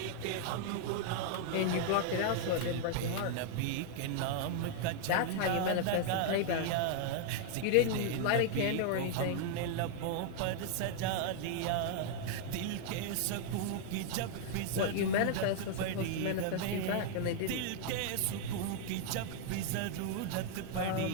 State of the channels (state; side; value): different; both; correlation 0.00